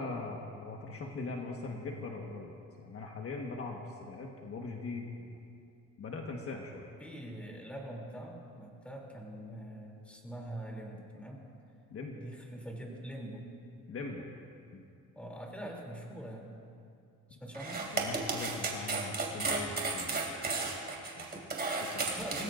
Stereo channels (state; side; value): normal; both; correlation 0.22